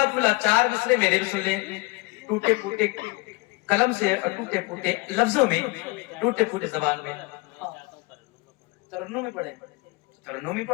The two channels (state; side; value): quieter; right; 23.8 dB